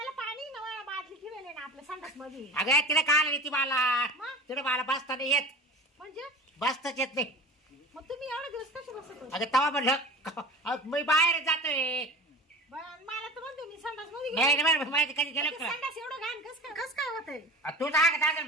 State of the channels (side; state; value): both; normal; correlation 0.36